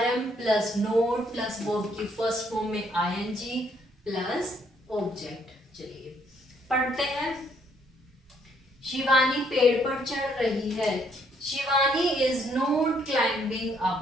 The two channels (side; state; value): both; normal; correlation 0.68